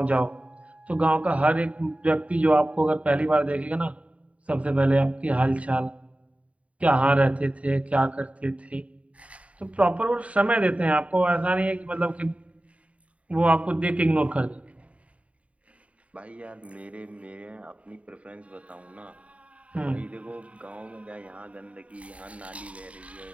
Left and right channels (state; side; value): late; left; 0.065 ms